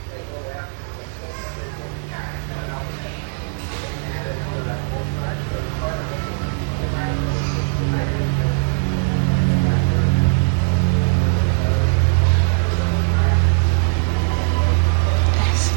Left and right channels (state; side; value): silent; left; 55 dB below the other